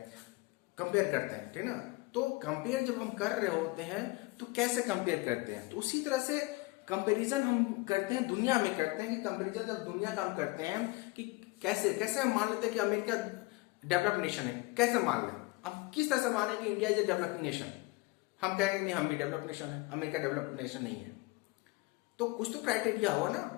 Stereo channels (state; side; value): quieter; right; 23.6 dB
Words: कंपेयर करते हैं, ठीक ना। तो कंपेयर जब हम कर रहे होते हैं तो कैसे कंपेयर करते हैं? तो उसी तरह से कंपैरिजन हम करते हैं, दुनिया में करते हैं कि कंपैरिजन जब दुनिया का हम करते हैं कि कैसे हम मान लेते हैं कि अमेरिका डेवलप्ड नेशन है, कैसे मान लें? अब किस तरह से माने कि India is a developing nation? हम कहेंगे नहीं, हम भी डेवलप्ड नेशन है, अमेरिका डेवलप्ड नेशन नहीं है। तो कुछ तो क्राइटेरिया हो ना,